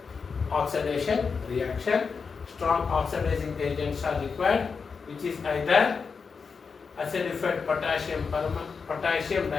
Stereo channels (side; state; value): right; quieter; 5.3 dB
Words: Oxidation reaction. Strong oxidizing agents are required, which is either acidified potassium